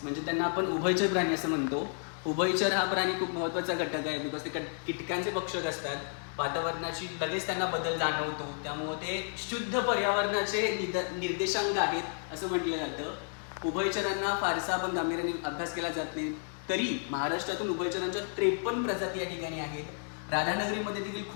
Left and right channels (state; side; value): silent; right; 55 dB below the other